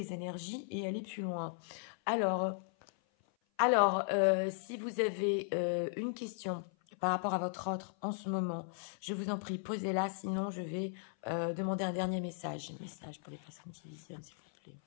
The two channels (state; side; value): silent; right; 53 dB below the other